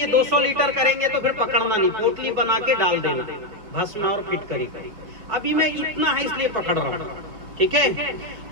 200 लीटर करेंगे तो फिर पकड़ना नहीं, पोटली बना के डाल देना, भस्म और फिटकरी। अभी मैं इतना है इसलिए पकड़ रहा हूँ, ठीक है?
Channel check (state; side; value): late; left; 5.3 ms